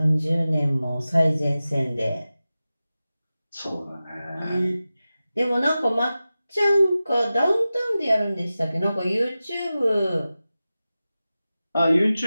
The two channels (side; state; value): both; inverted; correlation -0.95